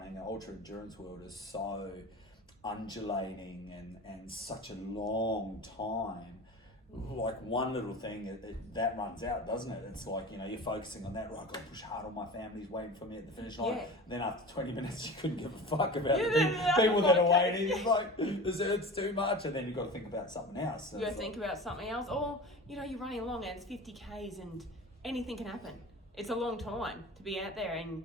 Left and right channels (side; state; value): both; normal; correlation 0.34